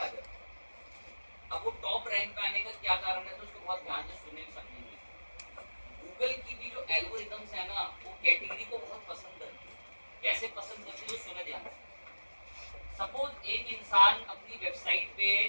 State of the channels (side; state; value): both; inverted; correlation -1.00